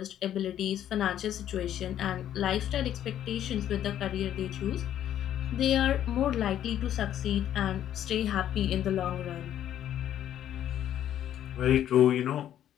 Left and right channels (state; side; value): quieter; right; 11.0 dB